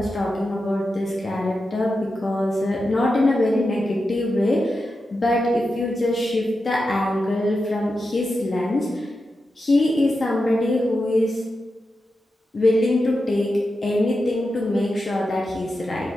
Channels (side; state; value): both; normal; correlation 0.90